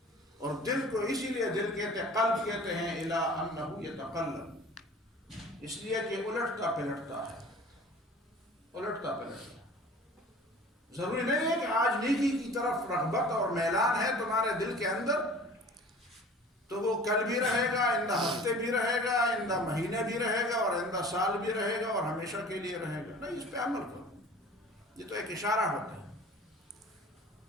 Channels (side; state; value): both; normal; correlation 0.44